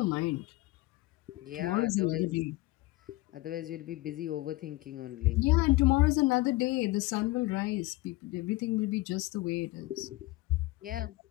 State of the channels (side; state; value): right; quieter; 19.7 dB